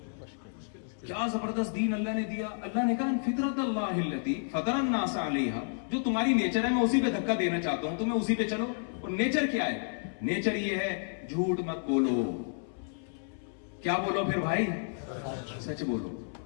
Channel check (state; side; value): silent; right; 57 dB below the other